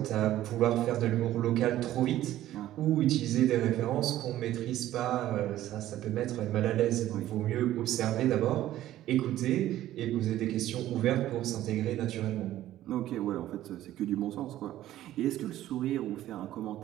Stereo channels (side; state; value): left; quieter; 13.7 dB